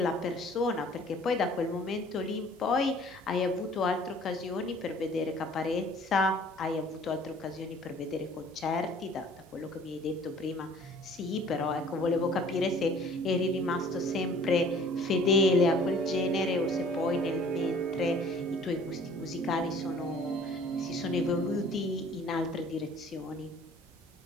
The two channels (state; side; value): normal; both; correlation 0.52